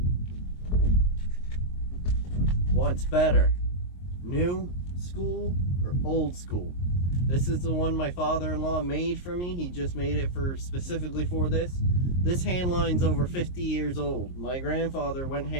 What's better, new school or old school? This is the one my father-in-law made for me. He just made it specifically for this. This hand line's over 50 years old. My grandfather went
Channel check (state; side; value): late; right; 22 ms